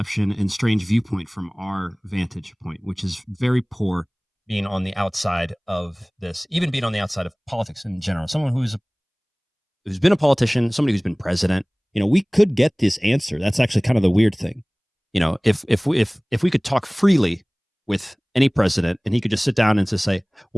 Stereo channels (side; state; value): both; identical; correlation 1.00